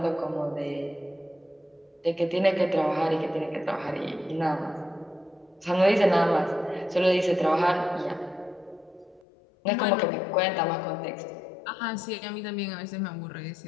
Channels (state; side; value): drops out; right; at 9.2 s